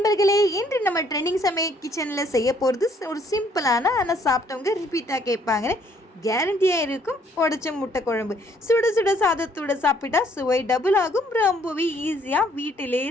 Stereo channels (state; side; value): normal; both; correlation 0.64